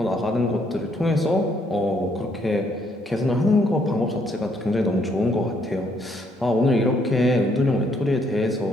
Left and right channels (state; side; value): normal; both; correlation 0.70